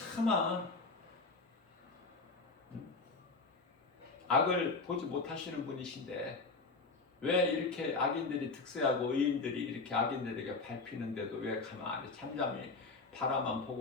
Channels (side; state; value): right; quieter; 3.9 dB